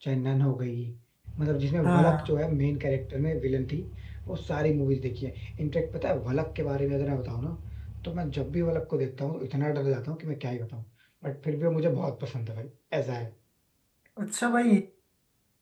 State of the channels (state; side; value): identical; both; correlation 1.00